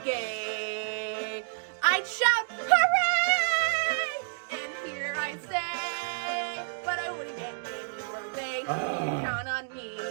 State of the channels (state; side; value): silent; left; digital silence